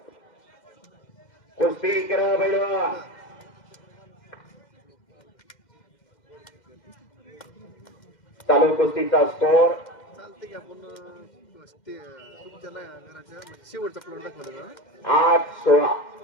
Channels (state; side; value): late; right; 2.1 ms